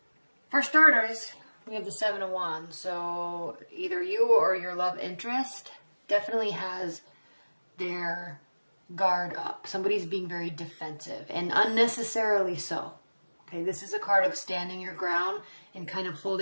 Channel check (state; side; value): inverted; both; correlation -1.00